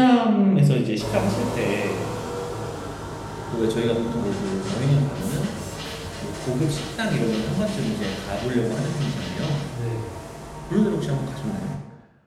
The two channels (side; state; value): both; identical; correlation 1.00